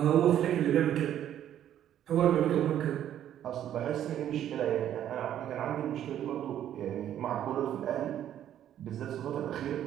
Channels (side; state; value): left; quieter; 10.9 dB